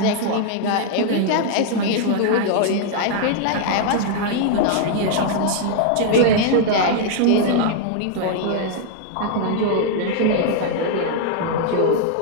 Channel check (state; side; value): different; both; correlation -0.01